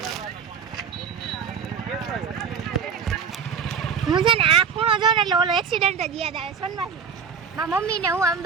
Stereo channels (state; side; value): quieter; left; 6.5 dB